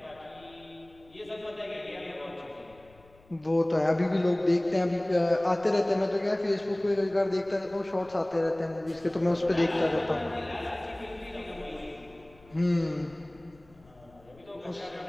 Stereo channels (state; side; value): noise; left; rumble, 27 dB below the sound